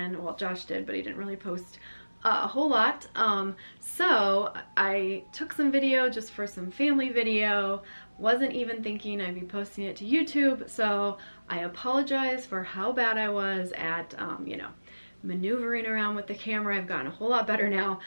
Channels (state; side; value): inverted; both; correlation -1.00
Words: Well, Josh did, but he didn't really post a whole lot. So I took some video just for some family video. Wasn't even thinking I'd be posting it to YouTube, so I apologize for how bad I was at, you know, maneuvering around with the camera. I've gotten a whole lot better now.